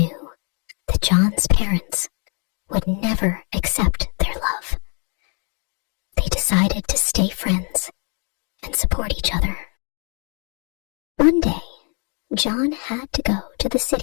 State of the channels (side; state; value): right; quieter; 37.3 dB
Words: that John's parents would never accept their love. They decided to stay friends and support each other. One day, John had to go to the